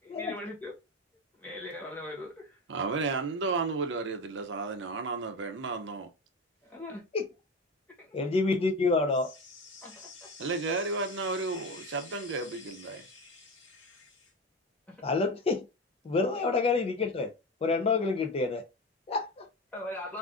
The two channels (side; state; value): both; normal; correlation 0.23